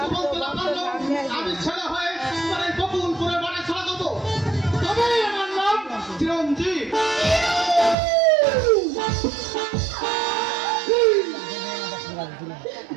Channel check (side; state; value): left; drops out; at 8.0 s